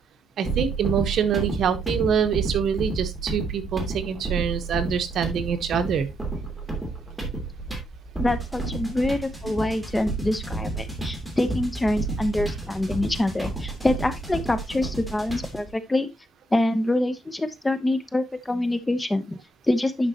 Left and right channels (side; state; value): both; normal; correlation 0.77